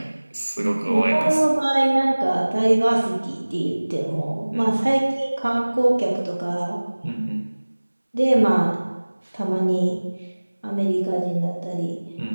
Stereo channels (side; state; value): both; inverted; correlation -1.00